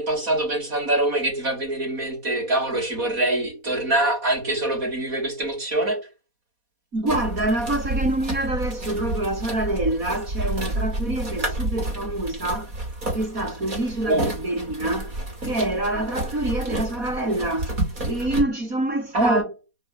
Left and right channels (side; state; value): left; late; 4.2 ms